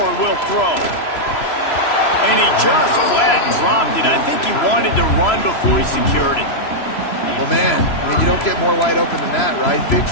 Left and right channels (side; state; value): right; late; 3.0 ms